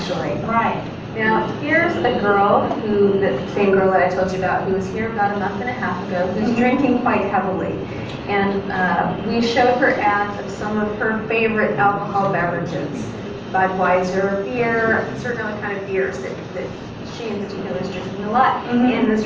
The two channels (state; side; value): identical; both; correlation 1.00